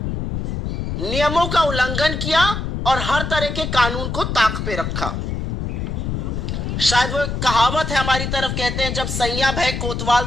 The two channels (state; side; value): noise; left; rumble, 3 dB below the sound